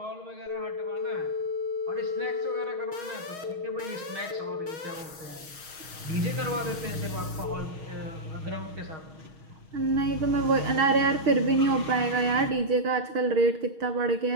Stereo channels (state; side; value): late; left; 6.3 ms